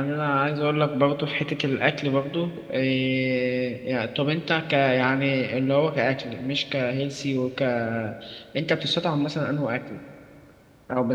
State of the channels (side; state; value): both; identical; correlation 1.00